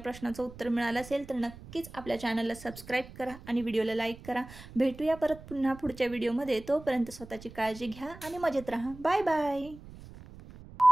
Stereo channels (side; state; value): right; noise; rumble, 17 dB below the sound